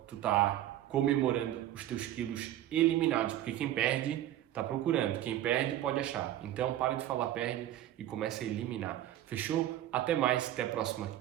tu tá comemorando os teus quilos eliminados, porque quem perde tá procurando, quem perde pode achar. Então para de falar perde e começa a eliminar. Fechou? Até mais, até a próxima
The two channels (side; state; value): left; quieter; 12.8 dB